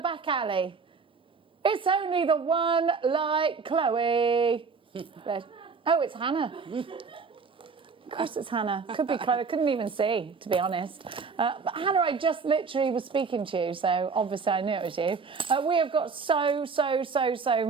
alley? It's only the one like Chloe. Oh, it's Hannah. Of course it's Hannah. Could be Chloe. Couldn't even see, to be honest. But Hannah, I just literally was speaking to you, so obviously I knew it was you. We have got so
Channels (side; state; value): left; quieter; 5.1 dB